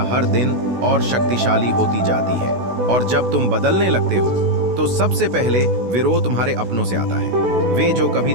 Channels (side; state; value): left; late; 16 ms